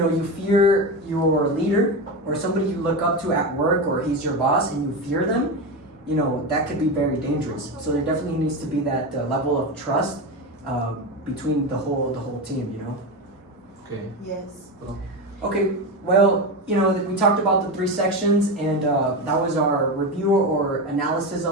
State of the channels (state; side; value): normal; both; correlation 0.18